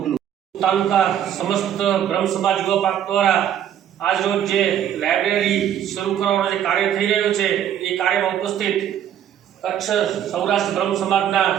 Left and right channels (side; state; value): left; quieter; 10.0 dB